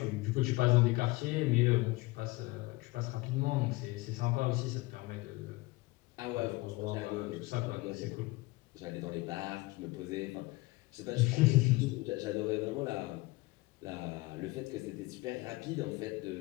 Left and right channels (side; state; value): right; quieter; 22.1 dB